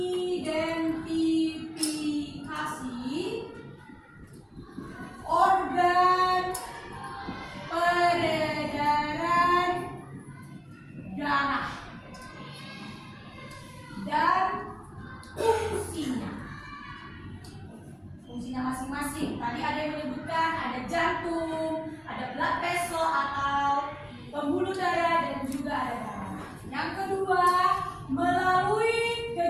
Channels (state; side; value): identical; both; correlation 1.00